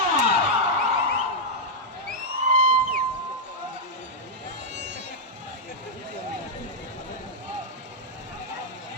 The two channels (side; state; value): both; normal; correlation -0.05